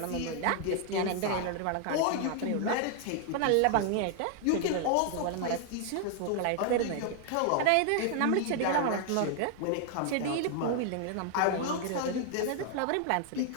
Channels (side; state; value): both; different; correlation 0.00